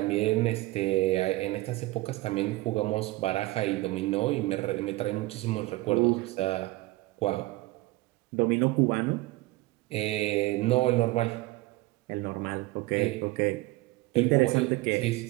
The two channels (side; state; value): left; quieter; 19.8 dB